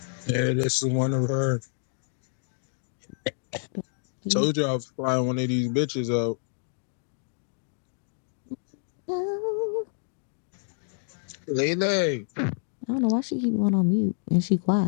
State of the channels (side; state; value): right; silent; digital silence